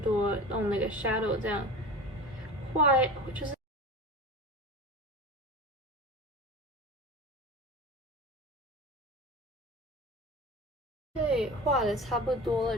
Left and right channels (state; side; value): normal; both; correlation 0.32